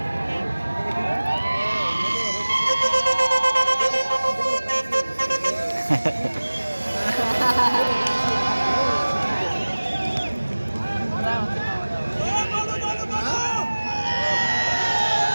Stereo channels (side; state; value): both; inverted; correlation -1.00